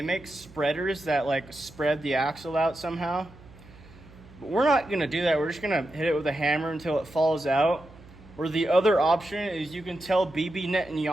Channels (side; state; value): right; noise; hum, 22 dB below the sound